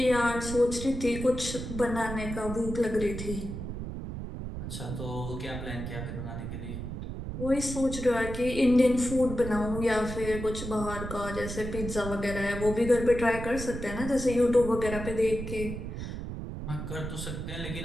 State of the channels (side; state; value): right; noise; rumble, 7 dB below the sound